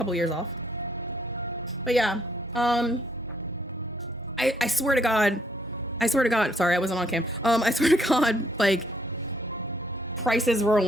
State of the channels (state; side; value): normal; both; correlation 0.68